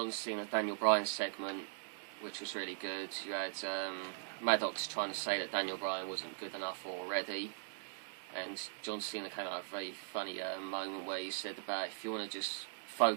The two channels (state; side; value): silent; left; 51 dB below the other